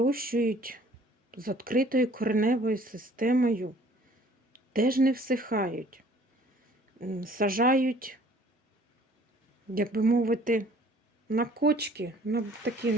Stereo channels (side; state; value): both; normal; correlation 0.55